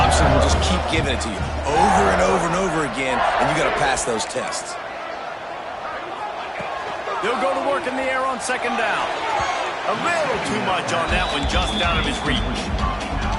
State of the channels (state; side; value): identical; both; correlation 1.00